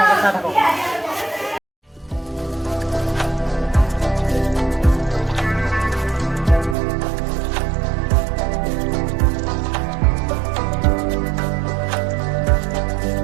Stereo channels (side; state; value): left; drops out; at 6.8 s